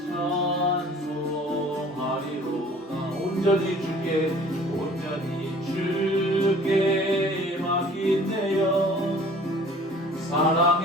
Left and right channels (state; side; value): normal; both; correlation 0.50